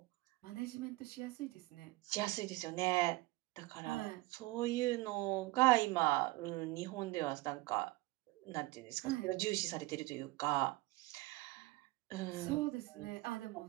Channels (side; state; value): left; quieter; 20.8 dB